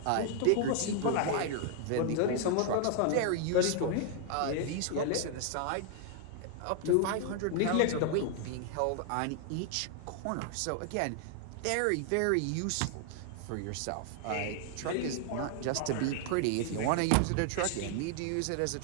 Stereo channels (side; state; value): both; different; correlation 0.00